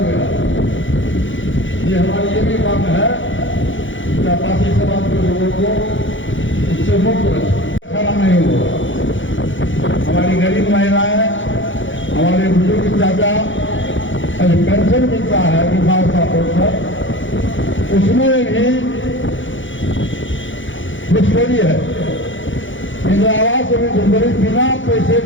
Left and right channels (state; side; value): late; right; 0.56 ms